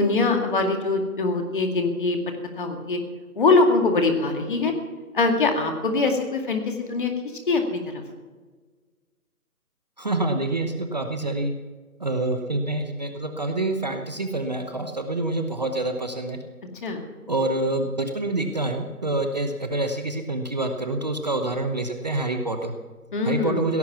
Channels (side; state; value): both; normal; correlation 0.07